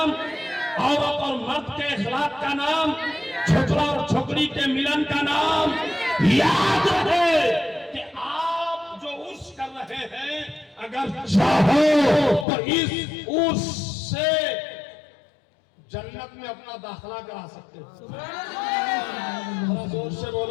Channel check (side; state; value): right; drops out; at 12.5 s